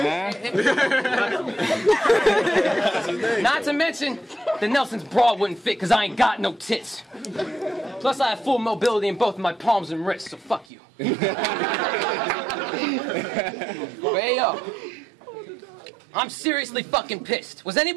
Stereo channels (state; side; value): drops out; left; at 10.7 s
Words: Not to mention, the Nelson's bra wouldn't fit because I ain't got no tits. Plus, I have full mobility in both of my palms and wrists, so fuck you. But hey, yo, I'm seriously fucking pissed. Was